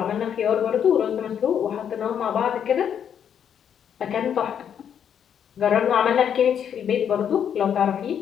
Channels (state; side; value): quieter; right; 8.6 dB